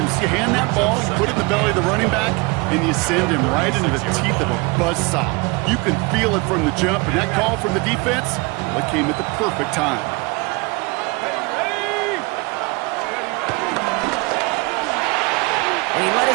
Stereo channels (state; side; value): quieter; left; 26.6 dB